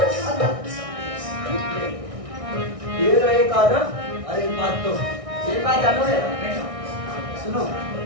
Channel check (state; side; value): late; left; 1.6 ms